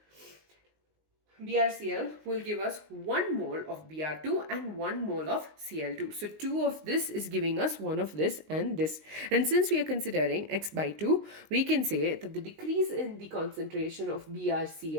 BrCl, will give us 1 mole of Br2 and 1 mole of Cl2. So 2 of this is giving us 1 of this and this. And since we are considering x by 2, we can say that the decrease in the concentration of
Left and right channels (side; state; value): left; late; 19 ms